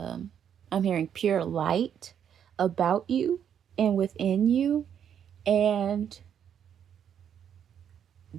hearing pure light about you and within you, and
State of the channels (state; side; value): quieter; left; 8.8 dB